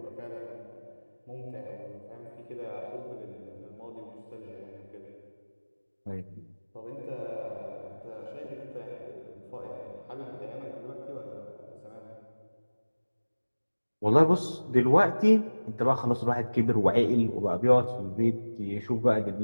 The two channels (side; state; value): both; inverted; correlation -1.00